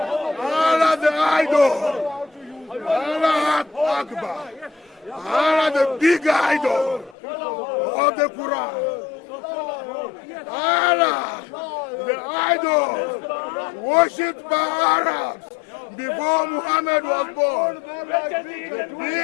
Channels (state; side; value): drops out; right; at 7.2 s